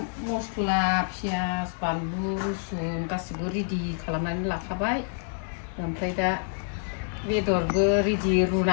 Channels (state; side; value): silent; right; digital silence